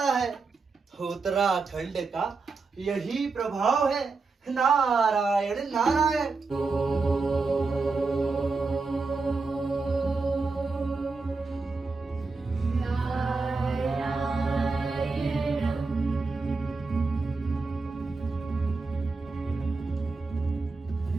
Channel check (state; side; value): quieter; left; 4.1 dB